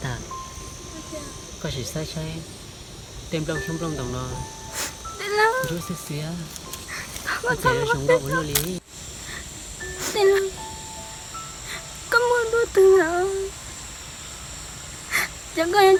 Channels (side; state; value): both; identical; correlation 1.00